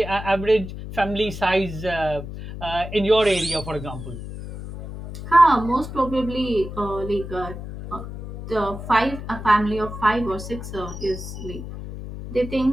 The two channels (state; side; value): noise; left; hum, 10 dB below the sound